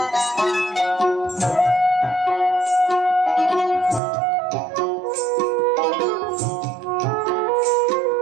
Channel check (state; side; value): drops out; left; at 4.0 s